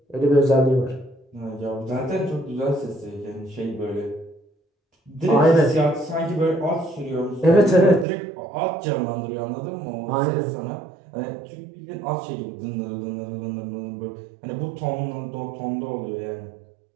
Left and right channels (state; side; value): drops out; left; at 8.1 s